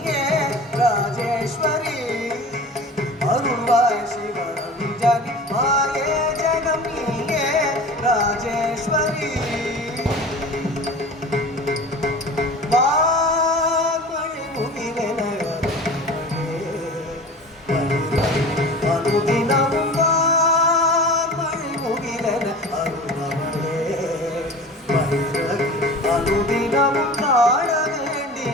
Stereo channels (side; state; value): both; normal; correlation 0.38